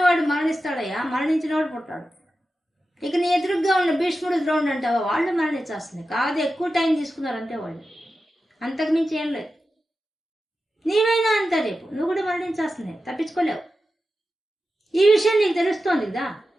మరణిస్తాడయ్యా, మరణించినవాడు పుట్టాడు. ఇక నీ ఎదురుగ్గా ఉన్న భీష్ముడు, ద్రోణుడు అంటావా, వాళ్ళు మరణించాల్సిందే. కాదు, ఎక్కువ టైం తీసుకున్నారు అంతే వాళ్ళు, అంతకు మించి ఏం లేదు. నీవైనా అంతా రేపు నువ్వు కూడా మరణించాల్సిందే, తప్పించుకోలేవు. ఈ విషయం నీకు తెలుస్తోంది కదా,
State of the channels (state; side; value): normal; both; correlation 0.92